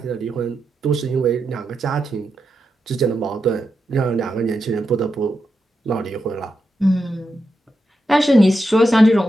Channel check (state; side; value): normal; both; correlation 0.87